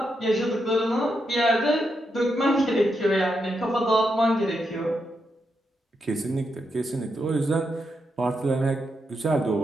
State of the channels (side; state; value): both; normal; correlation 0.83